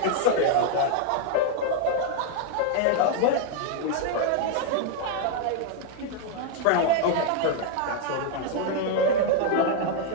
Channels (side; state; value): both; different; correlation 0.00